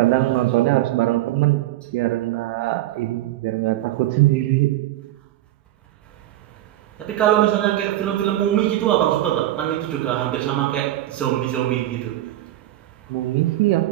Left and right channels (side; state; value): left; quieter; 14.7 dB